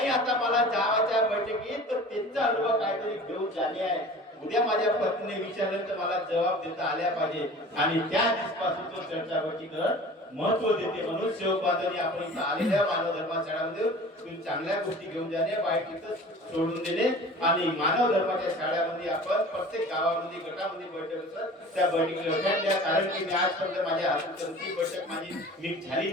आता मला जावाच्या बैठकीत तर त्याचा अनुभव काहीतरी घेऊन झाले आहे. उद्या माझ्या पत्नीने विचारलं तर मला जबाब देता आल्या पाहिजे. आणि त्या दिवसापासून तो चर्चा बैठकीकडे महत्व देते. म्हणून सेवक बांधवांनी आपण इथं आलेल्या मानव धर्माशाळामध्ये तुम्ही चांगल्या गोष्टी घेऊन जाणे, वाईट इथं सोडून देणे. आणि मानव धर्माच्या शाळेमध्ये आपण प्रत्येक गावामध्ये गटामध्ये बैठक असतात त्या बैठकीला लक्षात द्या. कारण की मी आजपर्यंत माझ्या हातून ती बैठक माझी झाली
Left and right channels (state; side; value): normal; both; correlation 0.42